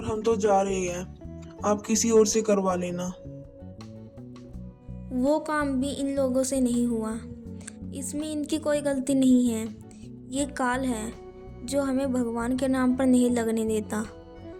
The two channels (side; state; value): both; identical; correlation 1.00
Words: हम तो जा रहे हैं। आप किसी और से करवा लेना। वो काम भी इन लोगों से नहीं हुआ। इसमें इनकी कोई गलती नहीं है। ये काल है जो हमें भगवान के नाम पर नहीं लगने देता।